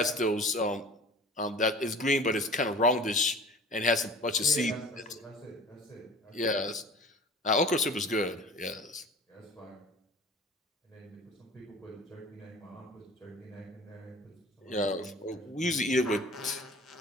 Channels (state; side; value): normal; both; correlation 0.42